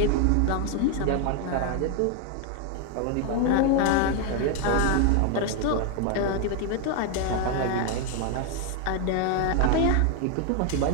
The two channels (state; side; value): different; both; correlation 0.01